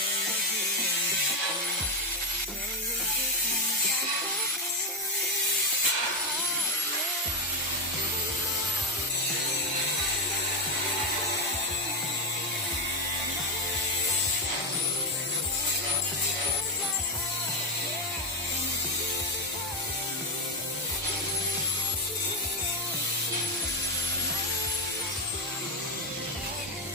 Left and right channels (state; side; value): normal; both; correlation 0.07